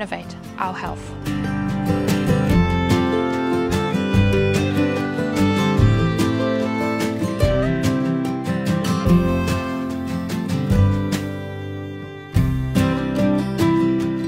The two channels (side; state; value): both; identical; correlation 1.00